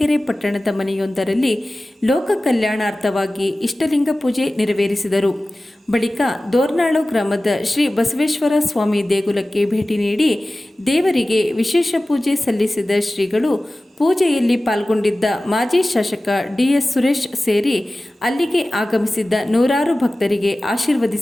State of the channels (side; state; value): both; normal; correlation 0.97